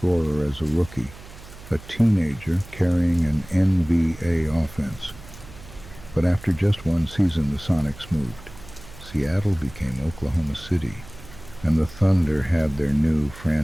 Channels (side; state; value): right; noise; hum, 18 dB below the sound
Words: as a rookie, a teenager carrying an NBA offense. But after just one season, the Sonics moved. Seattle became Oklahoma City, and the Thunder had their new